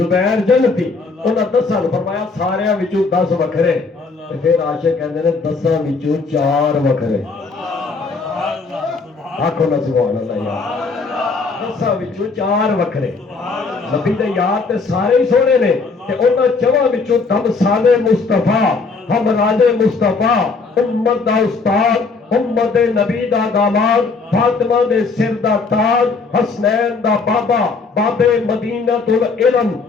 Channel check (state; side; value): quieter; right; 4.3 dB